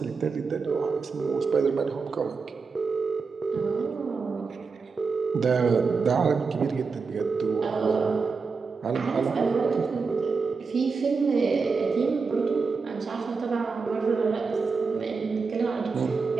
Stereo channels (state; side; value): quieter; left; 4.8 dB